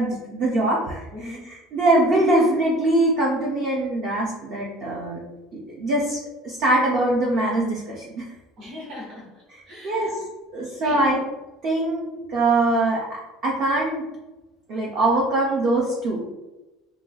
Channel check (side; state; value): both; normal; correlation 0.48